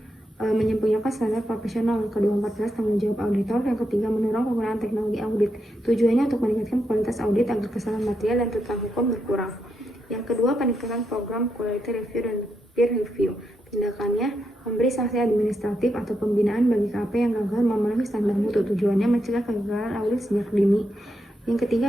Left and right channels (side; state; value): both; normal; correlation 0.83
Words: menyempurnakan standar profesional. Yang kedua, 14, tanggung jawab auditor. Yang ketiga, mendorong penggunaan teknologi audit. Tujuannya untuk meningkatkan kualitas audit agar kesalahan material dan tuntutan hukum berkurang. Yang kedua, peningkatan program quality review dan peer review. Tindakannya memberi sanksi administratif atau pembinaan bagi KAP yang gagal memenuhi standar mutu. Tujuannya mencegah kegagalan audit sejak dini. Yang